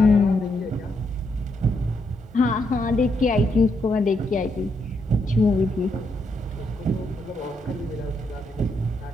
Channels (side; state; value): both; normal; correlation 0.78